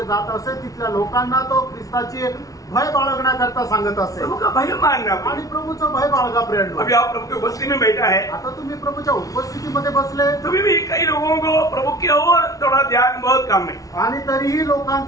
जात असे तिथल्या लोकांना तो ख्रिस्ताची भय बाळगण्याकरता सांगत असे. प्रभु का भय मानना. आणि प्रभूचं भय बाळगा प्रेरणा. अभी आप प्रभु की उपस्थिति में बैठा है. आता तुम्ही प्रभूच्या उपस्थितीमध्ये बसले तभी भी कई लोगों को प्रभु की ओर थोड़ा ध्यान बहुत कम है. आणि तरीही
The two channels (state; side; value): late; right; 0.17 ms